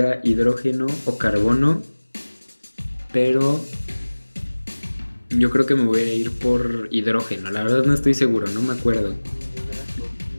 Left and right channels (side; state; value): both; inverted; correlation -1.00